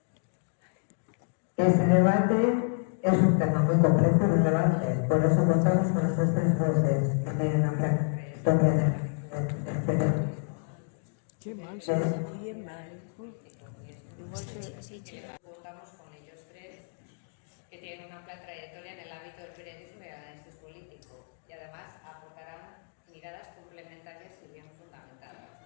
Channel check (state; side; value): silent; right; digital silence